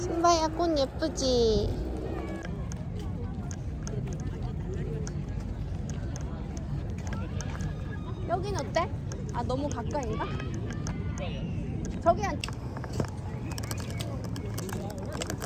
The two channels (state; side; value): identical; both; correlation 1.00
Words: 꽃 예쁘지? 여긴 어때? 아, 너무 가까이인가? 저기 한